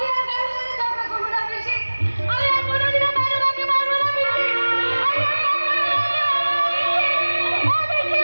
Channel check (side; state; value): both; inverted; correlation -1.00